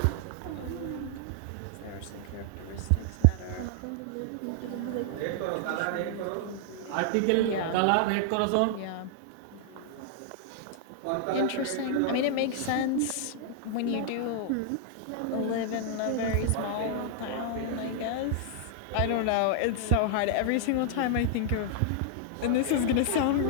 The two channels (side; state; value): both; different; correlation -0.01